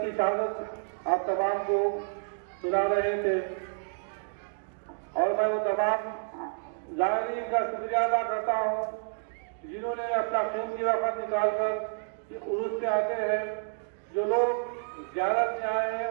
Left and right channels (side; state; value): left; silent; digital silence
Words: کی شہادت آپ تمام کو سنا رہے تھے اور میں وہ تمام زائرین کا شکریہ ادا کرتا ہوں جنہوں نے اپنا قیمتی وقت نکال کر عرس سے آتے ہیں۔ جو لوگ زیارت میں آئے ہیں